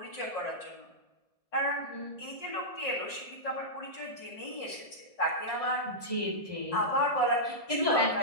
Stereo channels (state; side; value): late; right; 1.7 ms